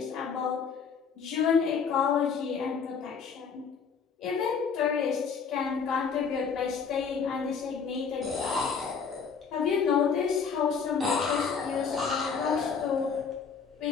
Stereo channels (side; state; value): right; quieter; 6.0 dB